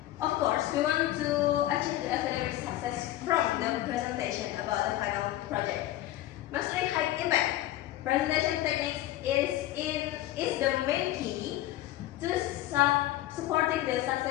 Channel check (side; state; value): right; quieter; 14.8 dB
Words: of course, we want to achieve the academic success from the presentation about the final project. Mastering high impact presentation techniques is the main key to supporting the